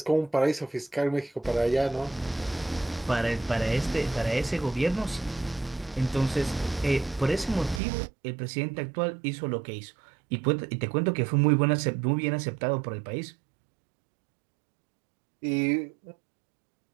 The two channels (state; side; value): drops out; left; at 7.8 s